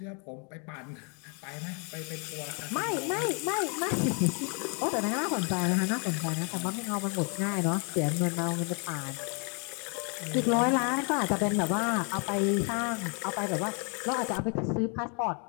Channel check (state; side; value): quieter; right; 36.9 dB